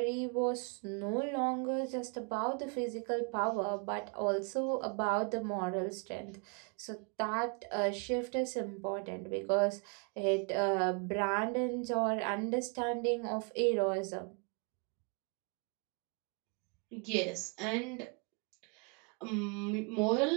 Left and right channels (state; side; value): quieter; left; 35.5 dB